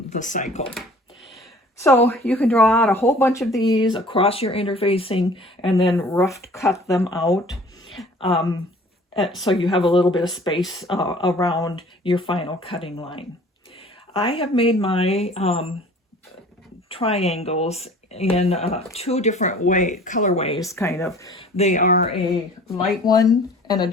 the cycle. So you can draw out a whole bunch of these across your interfacing and then rough cut them out, so you have a little bit of space around your final cutting line. I have made my triangles in 2 different colorways, kind of. They are a light one and a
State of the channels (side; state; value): both; normal; correlation 0.49